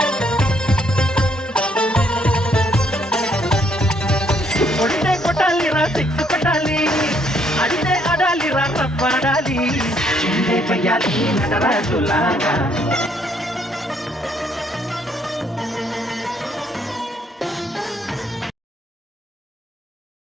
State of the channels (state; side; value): normal; both; correlation 0.69